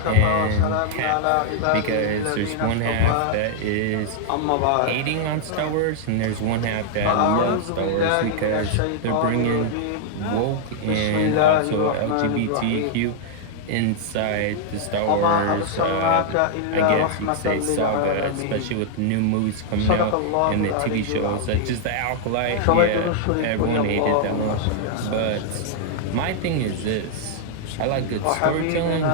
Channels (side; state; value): both; different; correlation -0.01